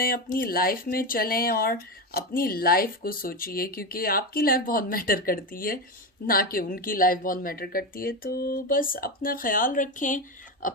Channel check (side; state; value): both; normal; correlation 0.16